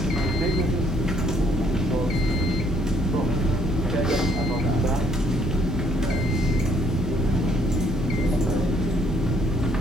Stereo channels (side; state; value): both; normal; correlation 0.66